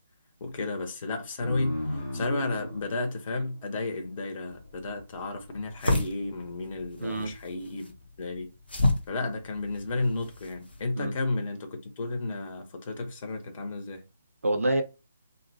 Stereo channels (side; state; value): both; inverted; correlation -0.85